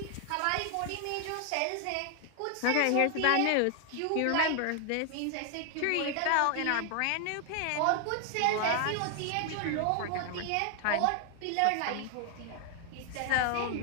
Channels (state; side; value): different; both; correlation 0.00